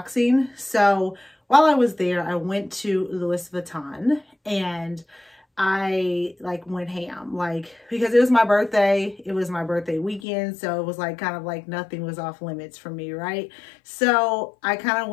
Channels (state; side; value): drops out; right; at 10.2 s